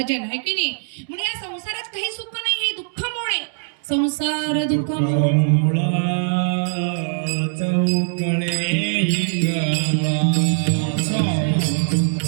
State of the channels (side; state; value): left; silent; digital silence